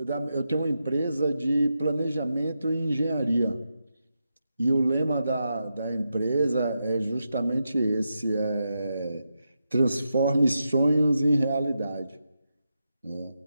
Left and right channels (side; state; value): both; inverted; correlation -0.86